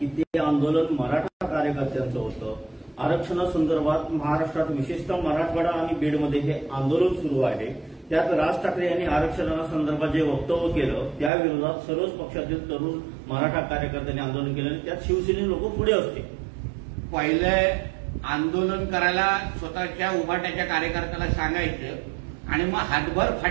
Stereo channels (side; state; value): left; drops out; at 11.3 s